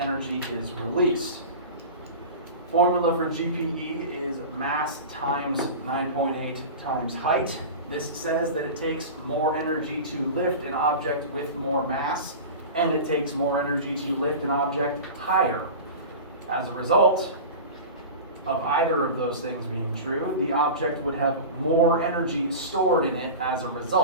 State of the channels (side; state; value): both; inverted; correlation -0.31